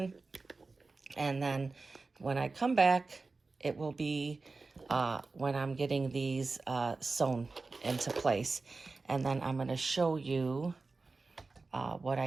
And then when I come back, it will be when I'm getting these sewn into place. And then I'm going to show you what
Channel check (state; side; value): quieter; left; 3.8 dB